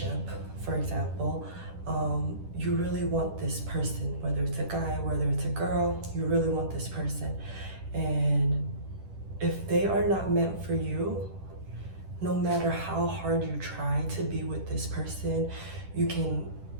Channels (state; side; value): late; left; 10 ms